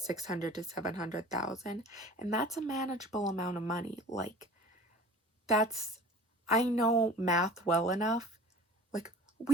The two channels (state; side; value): normal; both; correlation 0.43